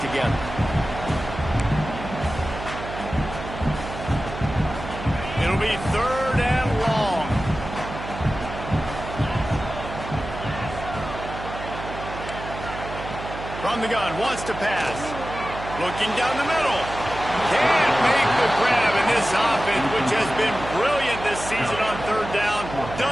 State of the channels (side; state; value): right; noise; hum, 10 dB below the sound